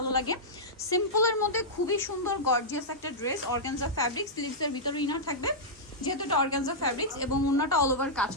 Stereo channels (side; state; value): both; normal; correlation -0.10